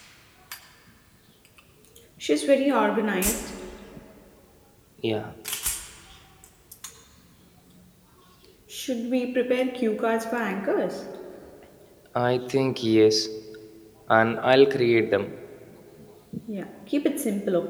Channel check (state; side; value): identical; both; correlation 1.00